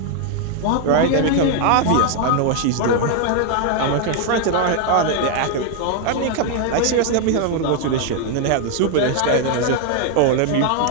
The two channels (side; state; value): both; different; correlation 0.00